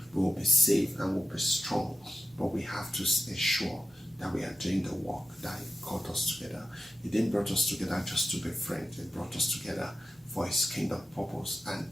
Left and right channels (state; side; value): normal; both; correlation 0.92